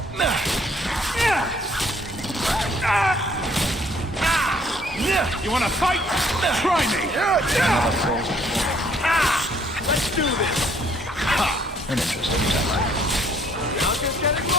You wanna fight? Try me! Another falls Let's do this! An interesting tactic. I'll just get it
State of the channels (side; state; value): both; normal; correlation 0.63